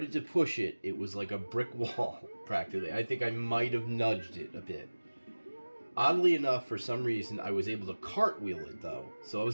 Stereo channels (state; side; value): inverted; both; correlation -1.00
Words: to push it. It was like a brick wall, practically. I think I might have nudged it a bit. Oddly enough, for some reason, I was able to cartwheel it, though. So I